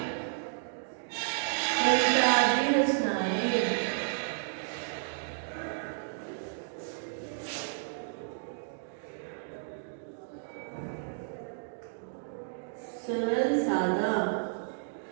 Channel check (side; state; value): left; silent; digital silence